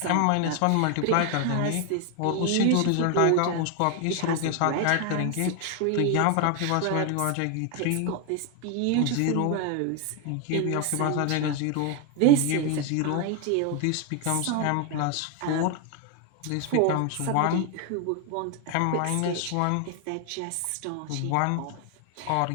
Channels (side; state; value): both; different; correlation 0.01